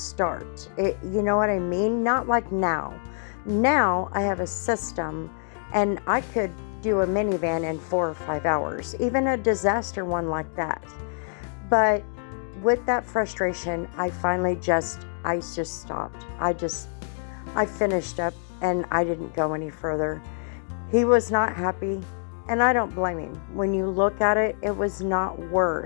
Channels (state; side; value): silent; right; digital silence